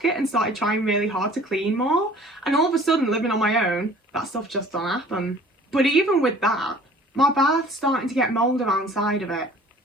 it and started trying really hard to clean more. And all of a sudden, living on my own, that stuff just don't happen. But even with that, my bath's starting to get mould around the side of it.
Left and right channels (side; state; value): both; normal; correlation 0.50